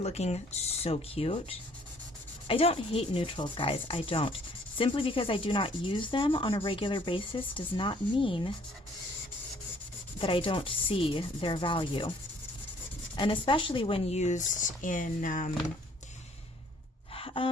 so cute. I don't hate neutrals, guys. I don't. Simply because I do not use them on a regular basis does not mean that I don't see their value. And especially when used in,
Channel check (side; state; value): both; normal; correlation 0.60